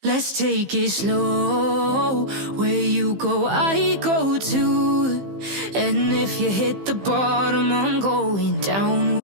Let's take it slow. Where you go, I go too. And if you hit the bottom, I'm going down.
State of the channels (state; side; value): late; left; 15 ms